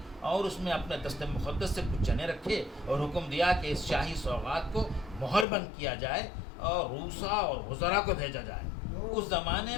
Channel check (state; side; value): drops out; right; at 5.5 s